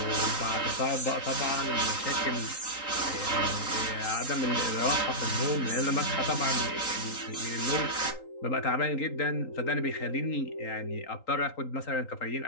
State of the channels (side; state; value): right; late; 3.8 ms